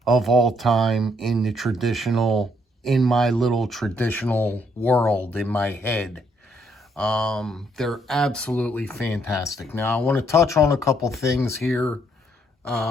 of all time in the traditional, in my little traditional world, in my head. They're absolutely fantastic. Now, I want to touch on a couple things here,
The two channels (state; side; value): normal; both; correlation 0.70